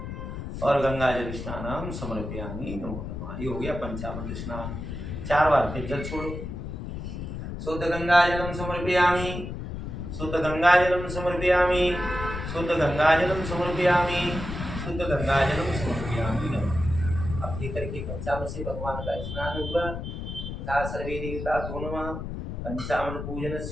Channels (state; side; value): noise; left; rumble, 7 dB below the sound